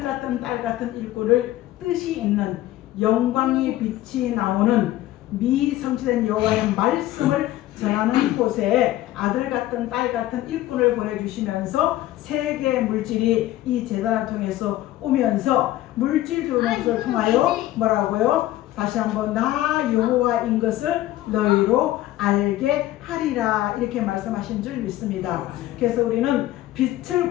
같은 딸 같은 일꾼을 뜻이 있는 영광의 빛이 나오는 미성취된 여호와의 말씀을 전하는 곳에 아들 같은 딸 같은 일꾼을 보내주시면서 세계 물질이 이 제단을 통해서 오면서 물질 들어오는 것을 통하여 뭐라고요? 다시 한번 나 여호와인 것을 너희로 알게 하리라 이렇게 말씀하신 줄 믿습니다. 그래서 우리는 빛을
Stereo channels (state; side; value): quieter; right; 15.1 dB